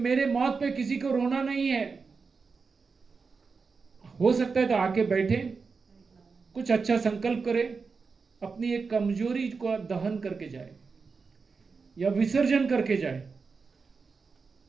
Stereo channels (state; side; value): quieter; left; 4.9 dB